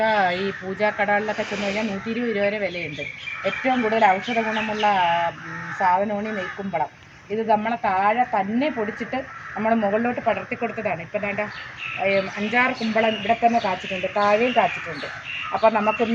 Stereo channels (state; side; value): identical; both; correlation 1.00